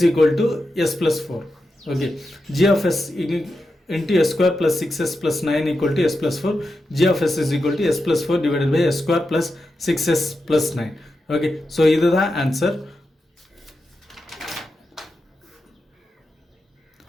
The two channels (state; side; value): normal; both; correlation 0.89